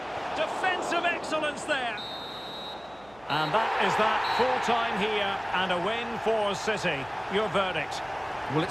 Defensive excellence there. And that is that, full time here and a win for City. Your verdict? Well,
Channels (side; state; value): right; noise; hum, 26 dB below the sound